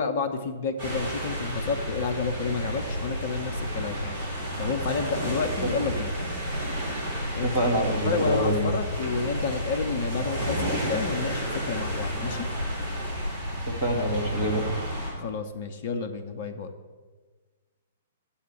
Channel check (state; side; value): inverted; both; correlation -0.48